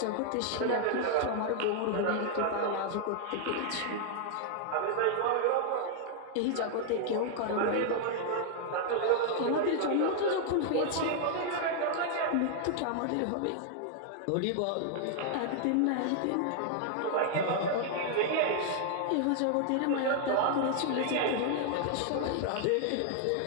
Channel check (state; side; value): different; both; correlation 0.00